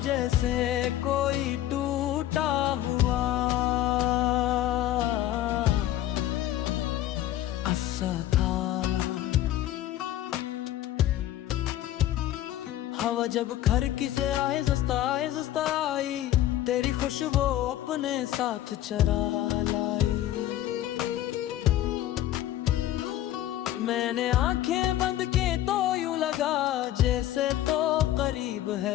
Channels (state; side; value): quieter; right; 13.2 dB